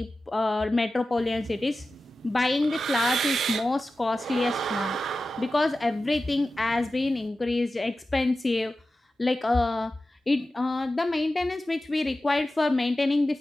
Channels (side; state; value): both; normal; correlation 0.94